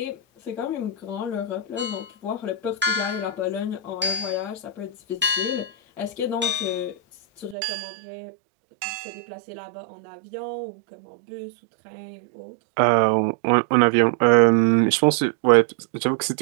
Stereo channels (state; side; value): drops out; left; at 7.6 s